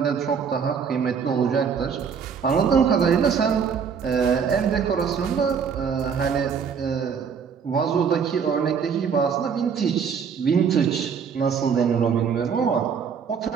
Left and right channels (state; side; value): quieter; left; 6.7 dB